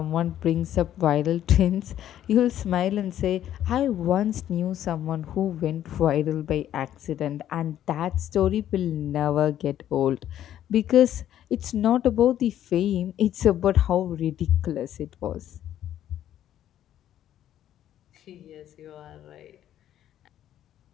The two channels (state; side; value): quieter; right; 11.5 dB